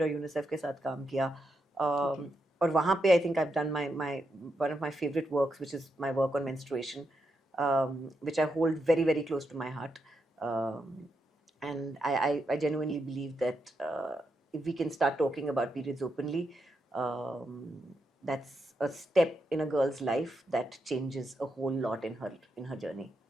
और यूनिसेफ के साथ काम किया। और वहाँ पे आई think I have done my one of my favourite works which is my work on menstruation, which I hold very very close to my heart, and I genuinely believe that if we can start talking about periods openly, um, that's a step in a girl's life that changes a whole lot in her journey.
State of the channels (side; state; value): both; normal; correlation 0.83